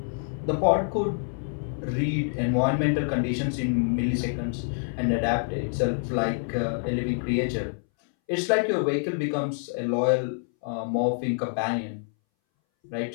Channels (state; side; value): silent; right; 60 dB below the other